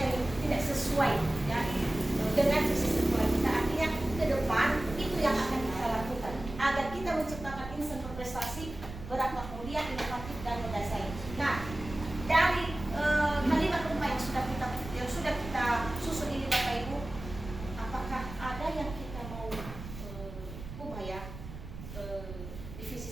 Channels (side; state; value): right; noise; rumble, 11 dB below the sound